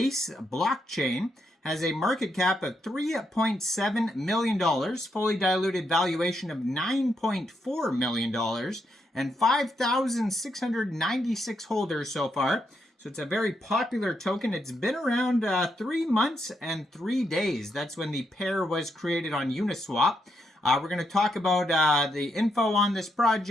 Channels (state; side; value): normal; both; correlation 0.80